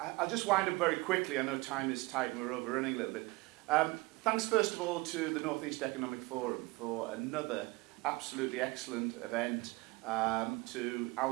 just wind up very quickly. I know time is tight and we're overrunning a little bit. Thanks first of all to the North East Economic Forum for another absolutely excellent event, to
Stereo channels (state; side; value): quieter; left; 23.5 dB